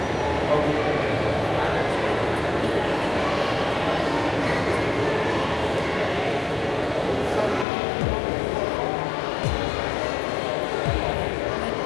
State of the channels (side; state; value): right; drops out; at 7.7 s